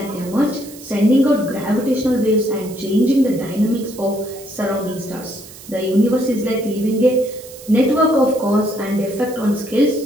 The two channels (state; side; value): noise; right; hiss, 18 dB below the sound